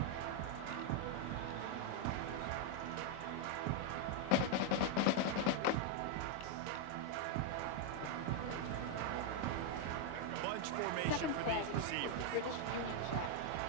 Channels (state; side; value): different; both; correlation 0.00